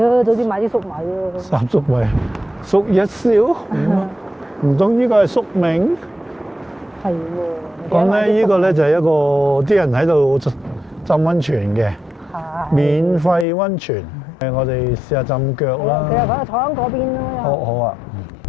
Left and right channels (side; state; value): right; drops out; at 13.5 s